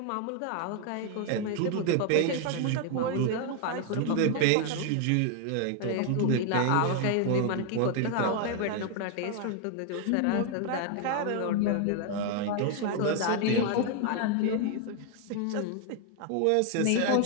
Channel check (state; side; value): different; both; correlation 0.00